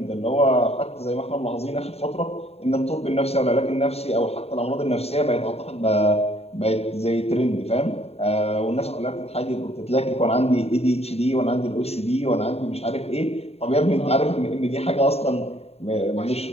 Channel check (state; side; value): late; right; 0.30 ms